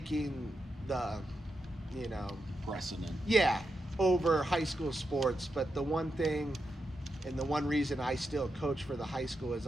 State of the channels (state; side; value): normal; both; correlation 0.86